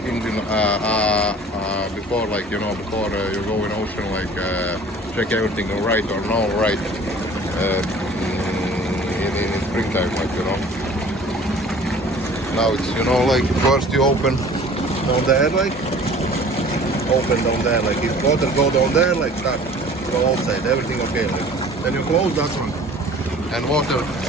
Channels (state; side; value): normal; both; correlation 0.47